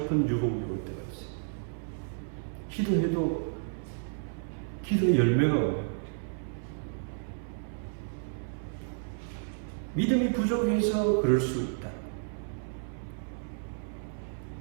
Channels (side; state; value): left; silent; 56 dB below the other